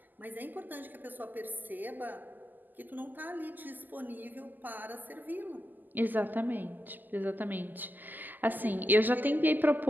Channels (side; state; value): left; late; 0.086 ms